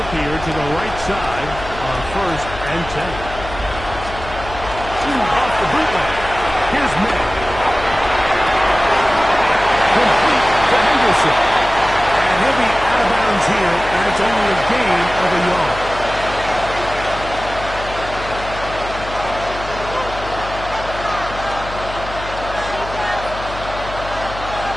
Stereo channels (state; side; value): noise; left; hum, 12 dB below the sound